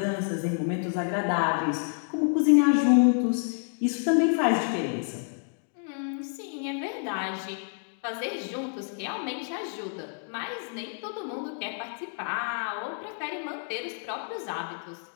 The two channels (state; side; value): silent; right; 59 dB below the other